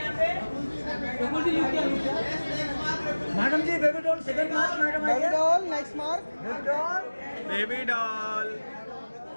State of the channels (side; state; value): both; inverted; correlation -1.00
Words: पे रकुल जी लुक किया, madam ji baby doll second mark, madam baby doll next mark, baby doll,